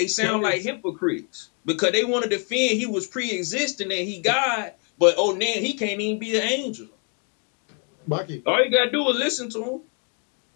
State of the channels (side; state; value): right; quieter; 38.3 dB